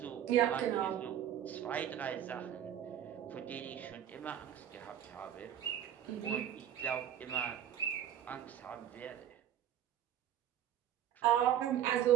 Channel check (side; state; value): left; quieter; 10.6 dB